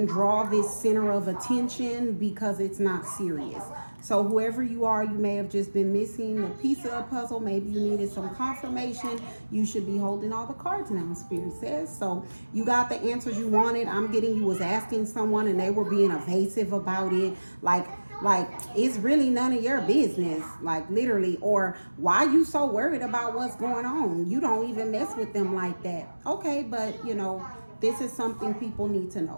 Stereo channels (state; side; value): inverted; both; correlation -1.00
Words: draw this center of attention because it's not serious. So whoever you are, you may have just been missing a piece of the puzzle. Maybe you needed some confirmation. You should be holding all the cards now, Spirit says. So you got the answers you wanted. I'm getting you was asking someone and they were being evasive about it. Like it's really none of your business, like literally. Or why you so worried about what's going on? You don't even mess with them like that. Okay, but you know, this is something people need to